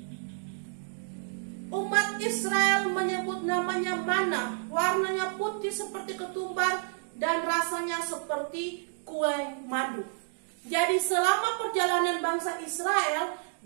umat Israel menyebut namanya mana, warnanya putih seperti ketumbar dan rasanya seperti kue madu. Jadi selama perjalanan bangsa Israel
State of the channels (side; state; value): left; silent; 58 dB below the other